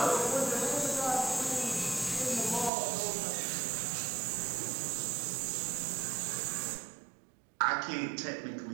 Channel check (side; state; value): left; drops out; at 2.7 s